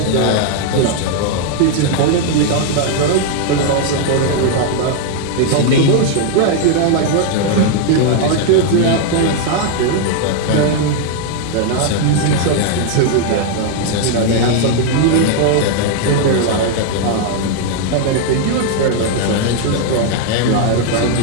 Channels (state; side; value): different; both; correlation 0.00